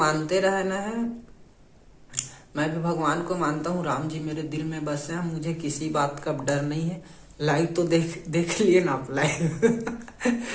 रहना है। मैं भी भगवान को मानता हूँ, राम जी मेरे दिल में बसे हैं, मुझे किसी बात का डर नहीं है। लाइव तो देख लिए ना आप लाइव।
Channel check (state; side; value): identical; both; correlation 1.00